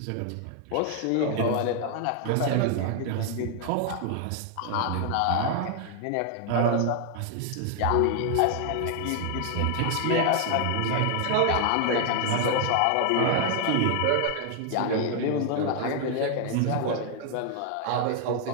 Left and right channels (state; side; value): different; both; correlation 0.00